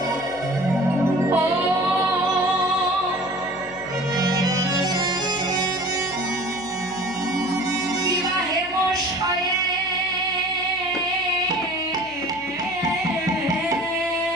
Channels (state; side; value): noise; left; hum, 21 dB below the sound